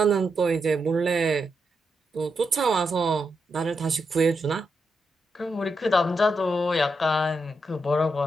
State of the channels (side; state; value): both; normal; correlation 0.84